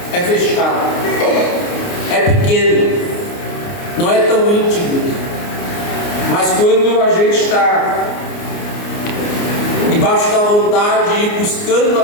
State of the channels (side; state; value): right; late; 29 ms